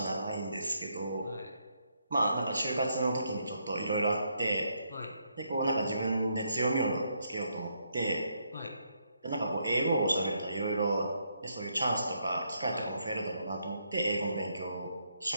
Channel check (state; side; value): inverted; both; correlation -0.76